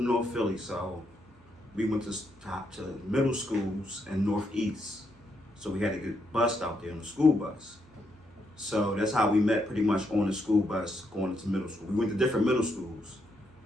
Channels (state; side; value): normal; both; correlation 0.78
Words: North Philly, so we went to middle schools in Northeast. So we had to get bussed out there on the school bus. So that's how we met, pretty much on the school bus going into middle school. We went to different middle schools,